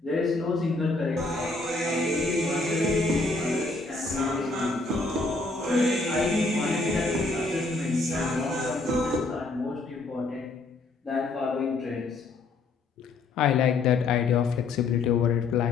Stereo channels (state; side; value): quieter; right; 3.5 dB